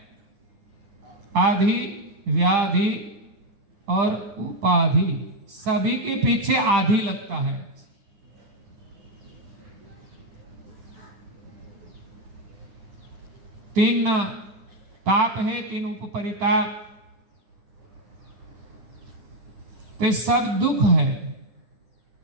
आधि, व्याधि और उपाधि, सभी के पीछे आधि लगता है। तीन ताप है, तीन उपपरिताप, तो सब दुख है।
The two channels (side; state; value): left; late; 10 ms